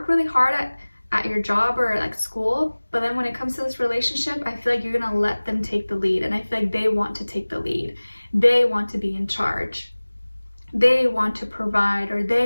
really hard at your job or like school, but then when it comes to this relationship, I feel like you're gonna let them take the lead, and I feel like they want to take the lead. They want to be in charge. They want to provide, or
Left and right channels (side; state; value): both; inverted; correlation -1.00